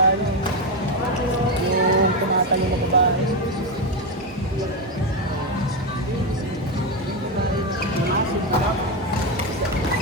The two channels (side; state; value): both; normal; correlation 0.09